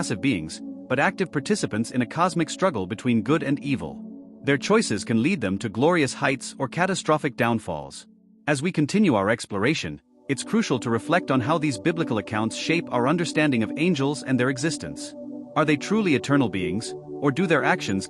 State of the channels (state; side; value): identical; both; correlation 1.00